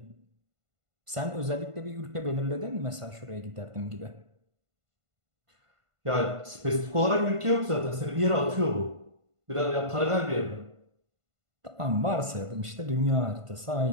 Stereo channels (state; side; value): late; left; 1.5 ms